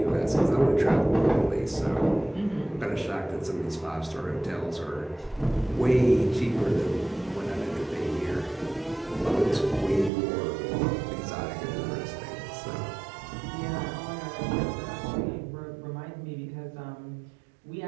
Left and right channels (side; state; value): left; drops out; at 10.1 s